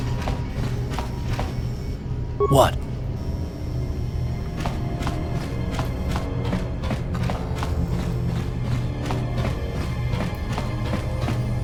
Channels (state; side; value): identical; both; correlation 1.00